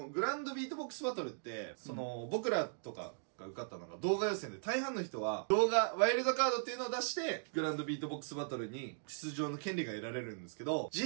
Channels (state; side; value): silent; left; digital silence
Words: のグランドビートボックスバトルって、その、僕らとかが受かったのが動画予選で、大半の人は動画、ワイルドカードっていうのを出して、グランドビートボックスバトルに出場の権利が得られるんですけど、